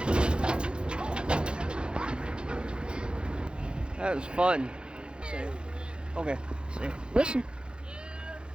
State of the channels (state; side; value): late; left; 0.052 ms